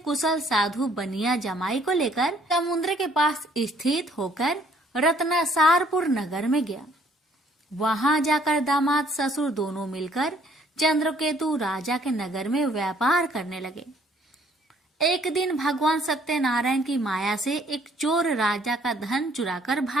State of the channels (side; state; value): both; normal; correlation 0.63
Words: कुशल साधु बनिया जमाई को लेकर समुद्र के पास स्थित होकर रत्नासारपुर नगर में गया। वहां जाकर दामाद ससुर दोनों मिलकर चंद्रकेतु राजा के नगर में व्यापार करने लगे। एक दिन भगवान सत्यनारायण की माया से एक चोर राजा का धन चुराकर